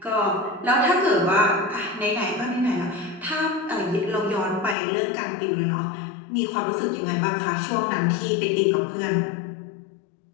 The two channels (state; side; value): drops out; right; at 4.8 s